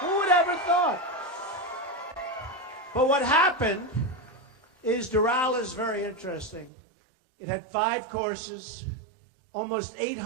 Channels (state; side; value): drops out; left; at 6.7 s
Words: Who would ever thought? But what happened is Doral is very interesting. It had 5 courses, almost